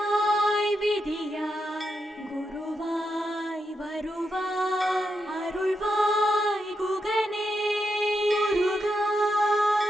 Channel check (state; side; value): normal; both; correlation 0.85